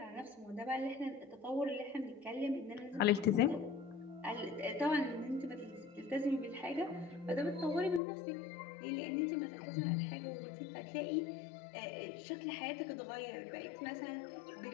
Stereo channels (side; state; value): right; drops out; at 8.0 s